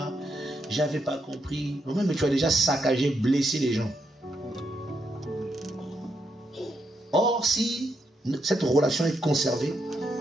j'avais pas compris. Non, mais tu as déjà saccagé, blessé les gens. Or, si cette relation est conservée,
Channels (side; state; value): both; normal; correlation 0.79